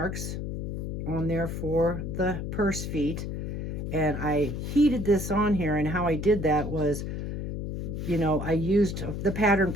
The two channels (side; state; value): left; noise; hum, 4 dB below the sound